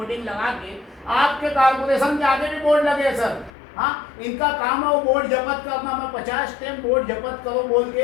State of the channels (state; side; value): drops out; right; at 3.5 s